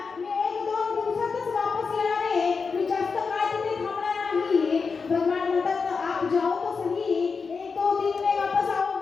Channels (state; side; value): quieter; right; 5.0 dB